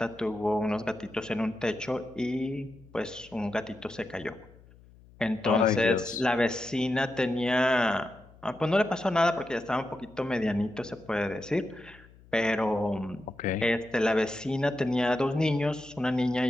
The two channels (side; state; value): left; noise; hum, 24 dB below the sound